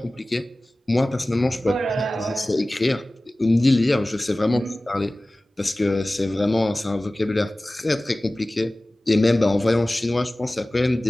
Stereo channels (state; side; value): normal; both; correlation 0.97